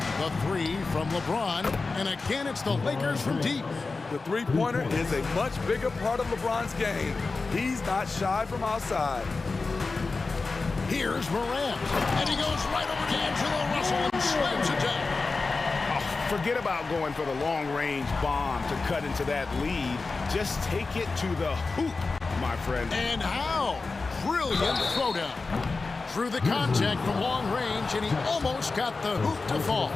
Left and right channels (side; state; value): right; quieter; 3.9 dB